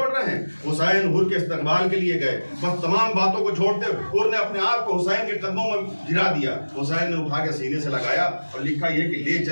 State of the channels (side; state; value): both; inverted; correlation -1.00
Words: रहे हैं। हुसैन हुर के इस्तकबाल के लिए गए, बस तमाम बातों को छोड़ते हुर ने अपने आप को हुसैन के कदमों में गिरा दिया। हुसैन ने उठा के सीने से लगाया और लिखा ये कि ले